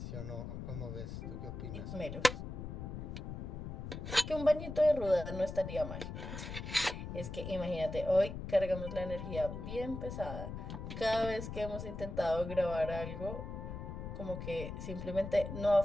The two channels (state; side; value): noise; left; rumble, 7 dB below the sound